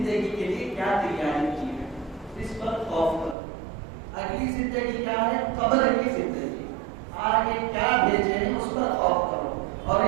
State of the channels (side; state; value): left; drops out; at 3.4 s